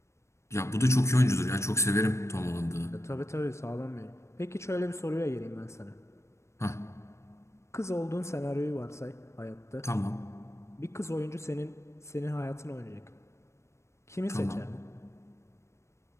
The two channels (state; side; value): late; right; 0.13 ms